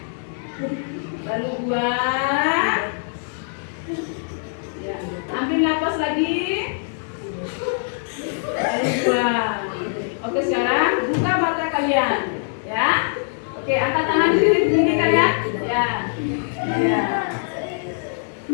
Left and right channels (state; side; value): silent; right; 64 dB below the other